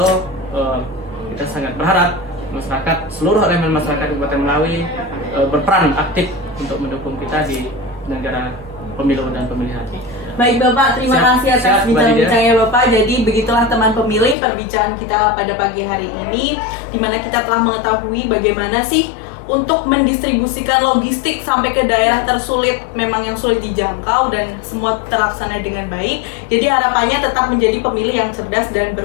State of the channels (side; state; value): right; drops out; at 14.4 s